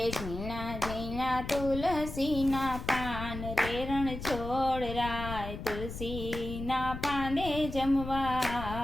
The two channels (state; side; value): noise; left; rumble, 8 dB below the sound